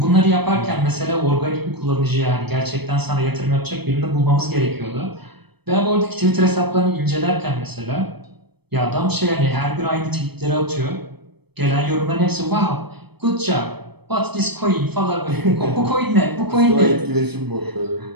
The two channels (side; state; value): left; late; 0.98 ms